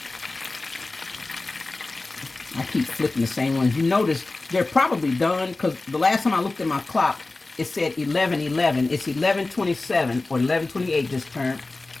I keep flipping the same ones. You notice they're probably done, because the last time I looked at my clock, it said 11:11. It's 11:27 or 11:28 this turn,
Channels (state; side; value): quieter; right; 3.3 dB